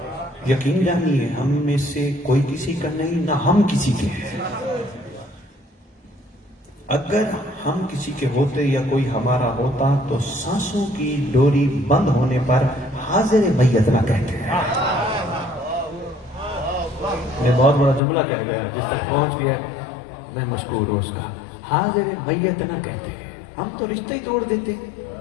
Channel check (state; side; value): drops out; right; at 18.0 s